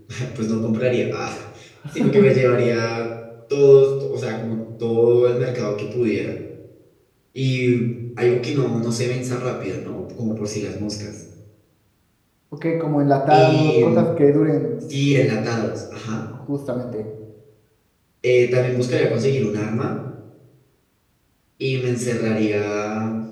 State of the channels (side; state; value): both; identical; correlation 1.00